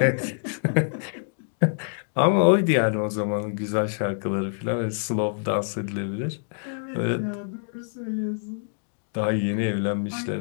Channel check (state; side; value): silent; right; digital silence